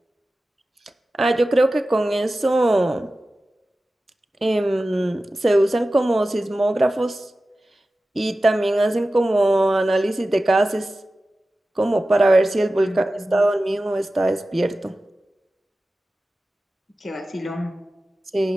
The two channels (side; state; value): both; normal; correlation 0.95